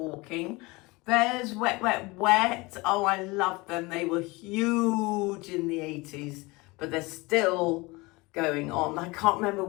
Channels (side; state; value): right; quieter; 23.8 dB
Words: There's Wet, Wet, Wet. Oh, I love them. They were huge in the 80s, but they're still going on. I can't remember